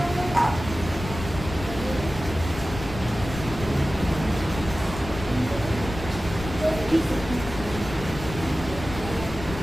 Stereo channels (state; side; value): noise; left; rumble, 10 dB below the sound